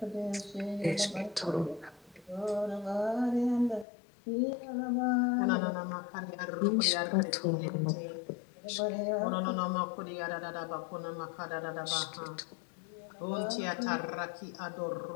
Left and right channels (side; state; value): right; drops out; at 3.9 s